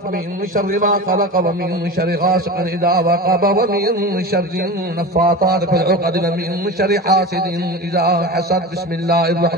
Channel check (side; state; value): both; normal; correlation 0.29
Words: من شر ما خلق ومن شر غاسق إذا وقب ومن شر النفاثات في العقد ومن شر حاسد إذا حسد. بسم الله